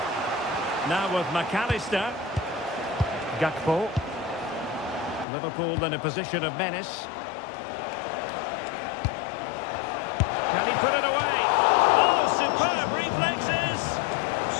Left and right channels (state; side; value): drops out; right; at 5.2 s